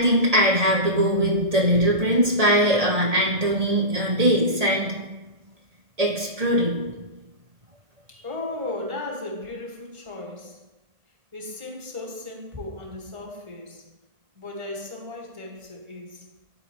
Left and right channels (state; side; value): late; left; 1.8 ms